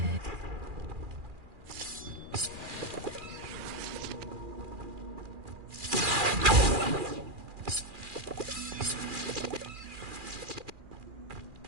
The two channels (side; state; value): left; late; 2.4 ms